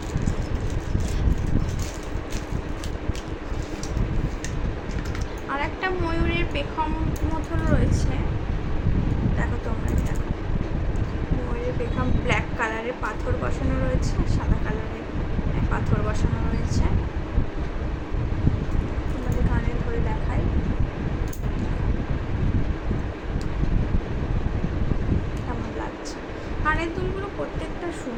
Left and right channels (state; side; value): identical; both; correlation 1.00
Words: আর একটা ময়ূরের পেখম মতন রয়েছে, দেখো তোমরা। দেখো, ময়ূরের পেখম ব্ল্যাক কালারের পাথর বসানো রয়েছে, সাদা কালারের পাথর বসানো রয়েছে। তোমাদের কানে ধরে দেখাই।